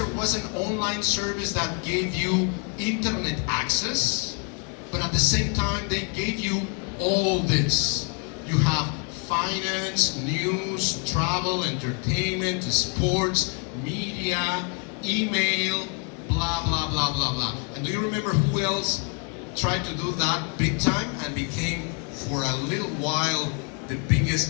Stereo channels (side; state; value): right; quieter; 37.9 dB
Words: was an online service that gave you internet access, but at the same time they gave you all this. You have finance, news, travel, entertainment, sports, media, email, blah, blah, blah, blah, blah. And do you remember who else tried to do that big time and became, for a little while, the